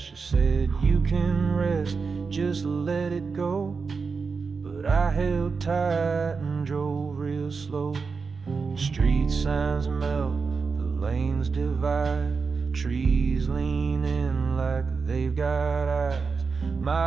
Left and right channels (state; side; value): quieter; left; 4.9 dB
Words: She said, you can rest, just let it go. But I held tight and drove real slow. Street signs melt, the lanes divide. Trees lean in like they've got eyes.